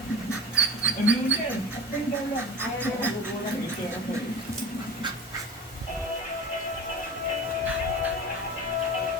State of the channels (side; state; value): both; normal; correlation 0.33